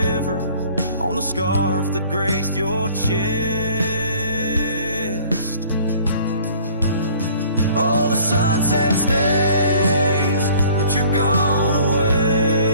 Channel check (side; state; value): both; inverted; correlation -0.53